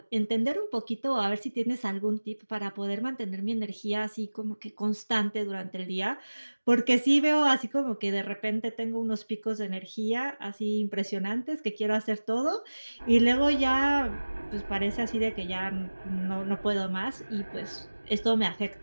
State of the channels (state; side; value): inverted; both; correlation -1.00